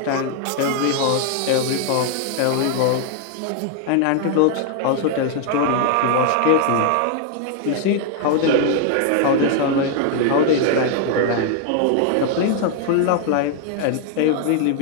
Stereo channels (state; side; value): different; both; correlation 0.00